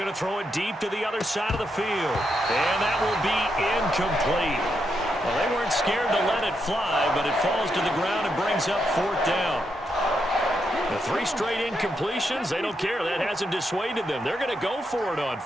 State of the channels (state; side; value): normal; both; correlation 0.82